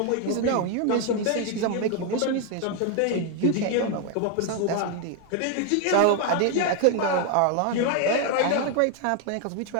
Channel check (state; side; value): different; both; correlation 0.01